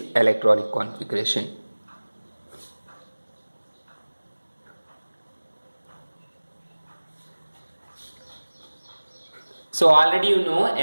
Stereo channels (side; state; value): both; inverted; correlation -1.00